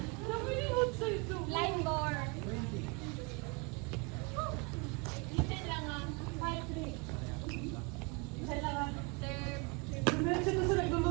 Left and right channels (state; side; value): quieter; left; 30.3 dB